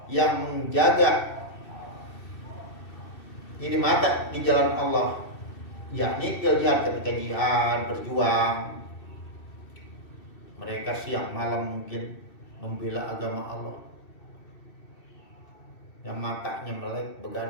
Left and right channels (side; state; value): right; late; 2.6 ms